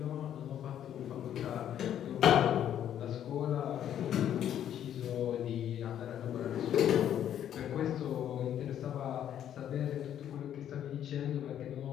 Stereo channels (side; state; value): right; quieter; 10.3 dB